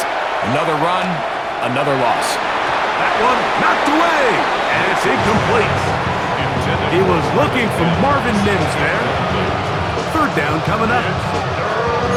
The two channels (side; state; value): both; identical; correlation 1.00